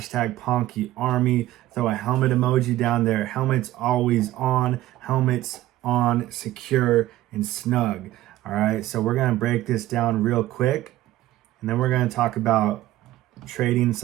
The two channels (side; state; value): left; quieter; 15.4 dB